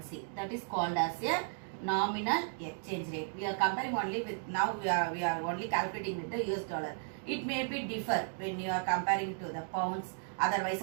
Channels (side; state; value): left; silent; digital silence